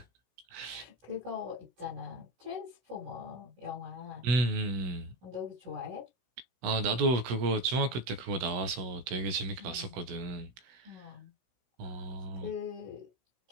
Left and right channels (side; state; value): left; late; 16 ms